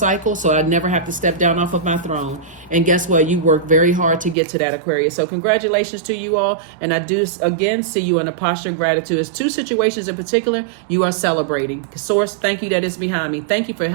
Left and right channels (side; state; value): left; drops out; at 4.4 s